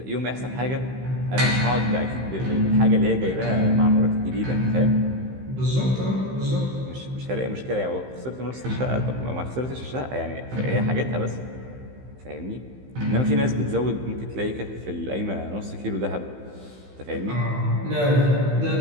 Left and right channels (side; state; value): left; late; 15 ms